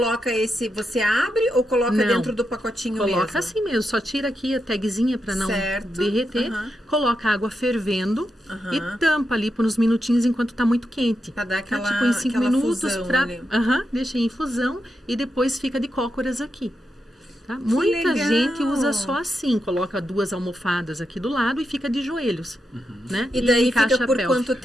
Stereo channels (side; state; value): both; normal; correlation 0.86